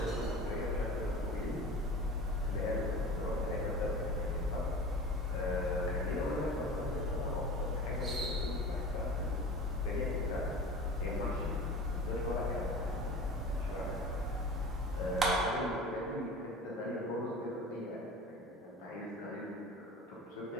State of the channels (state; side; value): normal; both; correlation 0.36